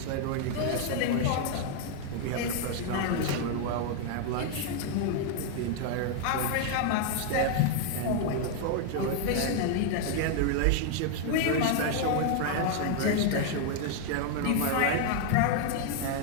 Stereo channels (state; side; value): different; both; correlation 0.00